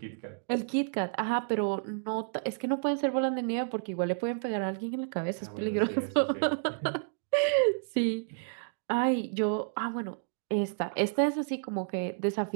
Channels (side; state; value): left; silent; digital silence